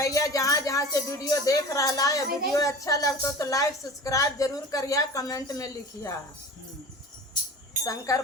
जहाँ जहाँ से वीडियो देख रहा है, वीडियो अच्छा लगता तो लाइक सब्सक्राइब जरूर करिया, कमेंट में लिखिया शंकर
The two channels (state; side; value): normal; both; correlation 0.37